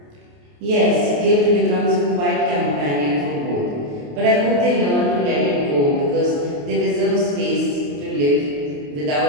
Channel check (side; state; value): left; late; 28 ms